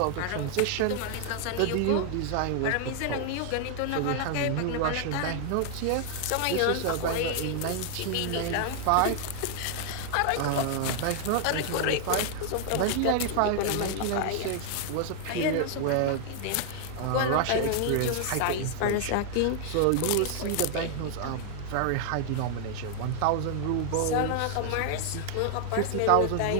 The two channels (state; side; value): different; both; correlation 0.00